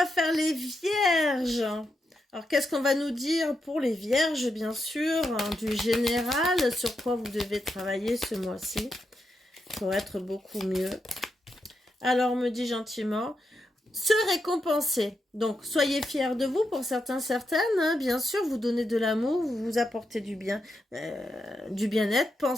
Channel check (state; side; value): normal; both; correlation 0.84